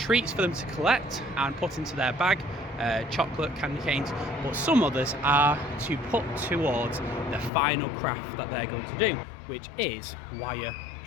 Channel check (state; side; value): drops out; right; at 7.5 s